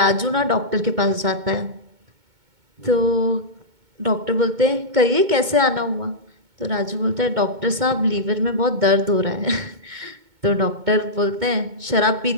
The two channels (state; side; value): late; left; 2.2 ms